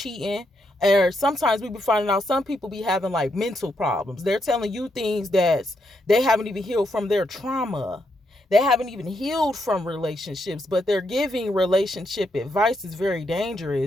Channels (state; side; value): normal; both; correlation 0.79